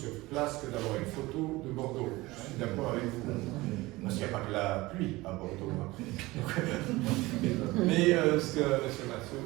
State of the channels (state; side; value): quieter; left; 20.3 dB